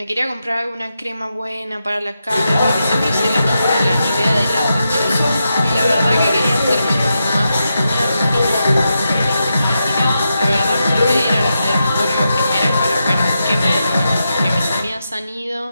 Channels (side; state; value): both; inverted; correlation -0.87